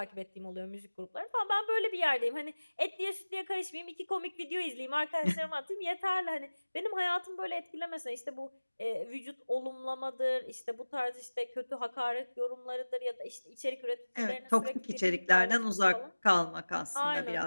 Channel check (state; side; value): inverted; both; correlation -1.00